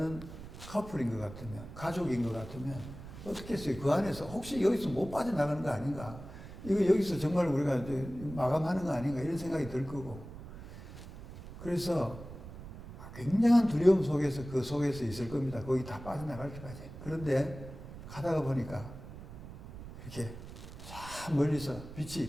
커플인 것 같으면, 가족인 것 같으면 어떻게 했어요? 그 안에서 혹시 여기서 못 빠져나가는 거 아닌가? 이거 여기서 정말 우리가 마감하는 거 아닌가? 이런 생각이 들 거고. 그래서 굉장한 두려움 속에서 그 속에서 있을 겁니다. 거기 다 빠져나갈 때까지. 그런데 가다가 보니까 이렇게 참 멀리서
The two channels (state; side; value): noise; right; rumble, 13 dB below the sound